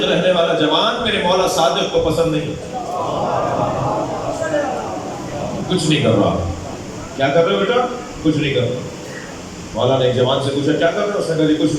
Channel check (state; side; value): identical; both; correlation 1.00